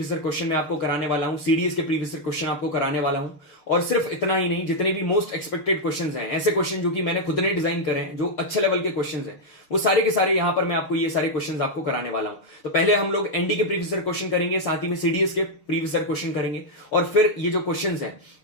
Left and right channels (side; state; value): right; late; 6.7 ms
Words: ईयर क्वेश्चन में आपको कराने वाला हूं, सीडीएस के प्रीवियस ईयर क्वेश्चन आपको कराने वाला हूं। और सिर्फ इतना ही नहीं, जितने भी मोस्ट एक्सपेक्टेड क्वेश्चंस हैं, ऐसे क्वेश्चन जो कि मैंने खुद ने डिजाइन करे हैं, जो अच्छे लेवल के क्वेश्चंस हैं, वो सारे के सारे यहां पर मैं आपको ये सारे क्वेश्चंस आपको कराने वाला हूं। तो पहले हम लोग एनडी के प्रीवियस ईयर क्वेश्चन करेंगे, साथ ही में सीडीएस के प्रीवियस ईयर क्वेश्चन करेंगे, और फिर ये जो क्वेश्चंस हैं